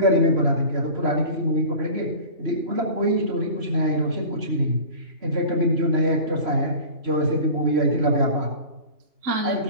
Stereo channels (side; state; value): left; late; 3.0 ms